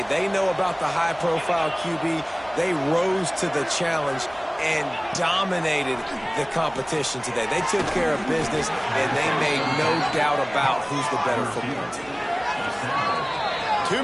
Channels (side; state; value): right; noise; hum, 25 dB below the sound